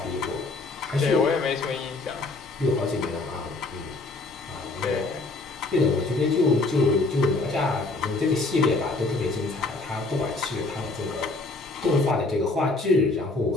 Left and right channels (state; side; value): quieter; right; 3.3 dB